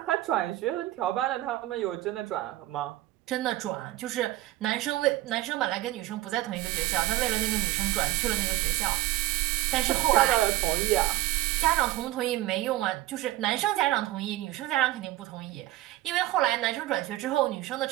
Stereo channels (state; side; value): quieter; left; 16.3 dB